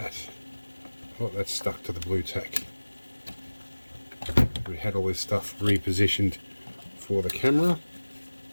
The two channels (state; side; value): inverted; both; correlation -1.00